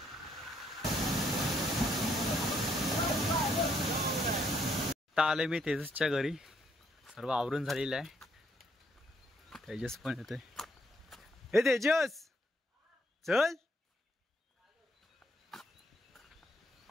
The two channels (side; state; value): both; normal; correlation 0.71